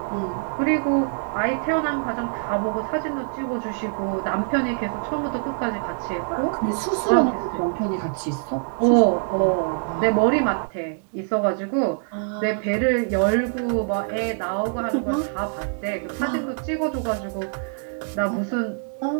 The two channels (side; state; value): left; silent; 62 dB below the other